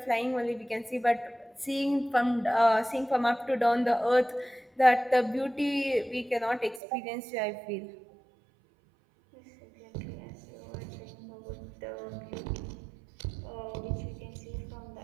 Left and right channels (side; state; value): left; drops out; at 6.8 s